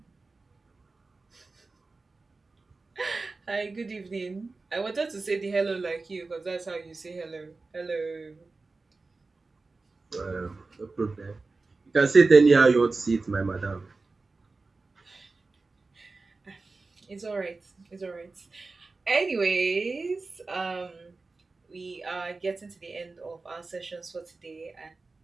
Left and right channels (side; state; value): left; quieter; 3.7 dB